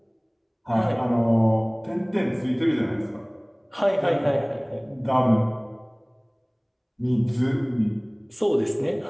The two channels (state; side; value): identical; both; correlation 1.00